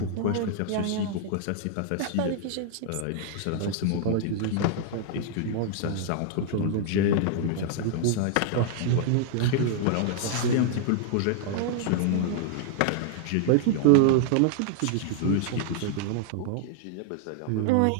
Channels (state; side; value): different; both; correlation 0.00